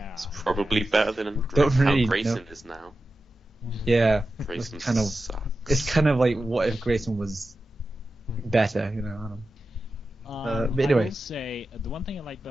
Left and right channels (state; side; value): normal; both; correlation 0.92